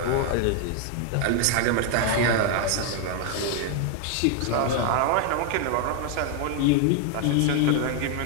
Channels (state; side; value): different; both; correlation 0.00